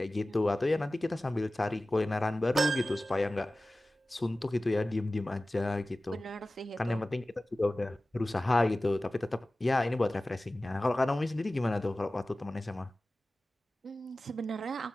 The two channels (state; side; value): normal; both; correlation 0.96